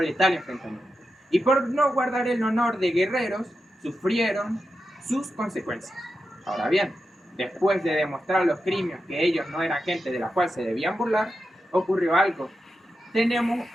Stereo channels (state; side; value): normal; both; correlation 0.89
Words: letal enfrentamiento. Y por no guardar el honor de guerreros, sufrieron sus consecuencias. Ahora bien, después de demostrar los crímenes que ellos no eran gente de la cual se debían burlar, ocurrió algo.